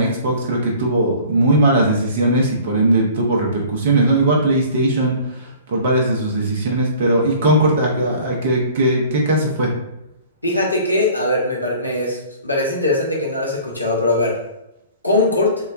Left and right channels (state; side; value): inverted; both; correlation -0.48